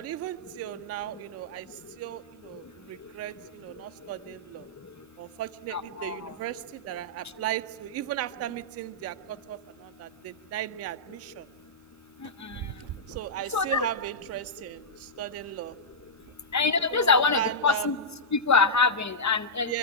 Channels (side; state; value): both; normal; correlation -0.11